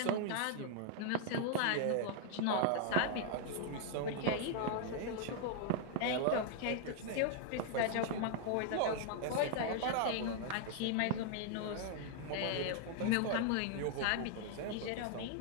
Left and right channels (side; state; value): both; different; correlation 0.00